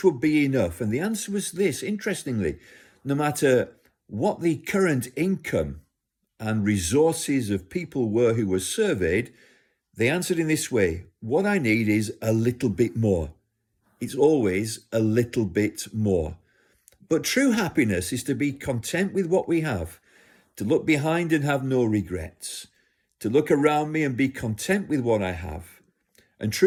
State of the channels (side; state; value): both; identical; correlation 1.00